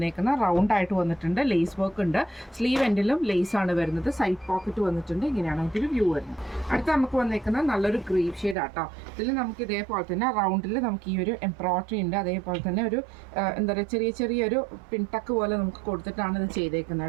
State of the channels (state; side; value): drops out; left; at 8.6 s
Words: റൗണ്ട് ആയിട്ട് വന്നിട്ടുണ്ട്. ലേസ് വർക്ക് ഉണ്ട്. സ്ലീവ് എൻഡിലും ലേസ് ആണ് വരുന്നത്. സൈഡ് പോക്കറ്റ് വന്നിട്ടുണ്ട്. ഇങ്ങനെയാണ് ഇതിൽ വ്യൂ വരുന്നത്. അടുത്ത നമുക്ക് വന്നേക്കുന്നത് നല്ലൊരു ഗ്രീൻ ഷെയ്ഡ് ആട്ടോ. ഇതിൽ നമുക്ക് ഇതേപോലെ തന്നെ റൗണ്ടിൽ നമുക്ക് ഈ ഒരു എംബ്രോയിഡറി ഉണ്ട്. അതേപോലെ തന്നെ ഒരു എന്താ പറയുക ചെറിയൊരു പിൻടക്ക് പോലെ നമുക്ക് കൊടുത്തിട്ടാണ് ഇത് ചെയ്തേക്കുന്നത്